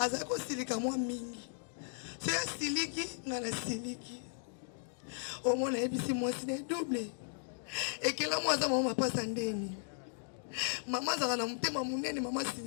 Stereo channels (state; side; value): silent; right; digital silence